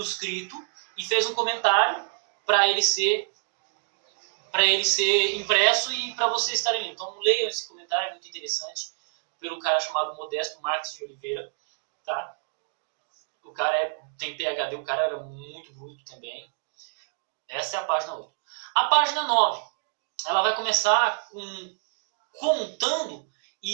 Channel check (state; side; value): silent; left; digital silence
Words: e fez um comentário para ele ser impresso e para vocês estarem lendo. Então leiam esse comentário, é muito interessante, pelo cara chamado Modesto Marques de Oliveira. Tá? O cara tem PhD, o cara era muito bruto também. Essa é a página 8. A página 9, ela vai começar contando,